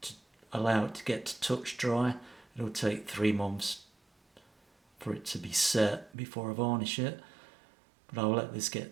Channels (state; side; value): drops out; left; at 6.2 s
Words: allow it to get to touch dry. It'll take 3 months for it to be set before I varnish it, but I'll let this